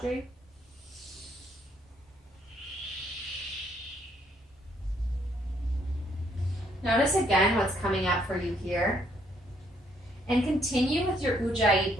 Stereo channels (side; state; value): both; normal; correlation 0.69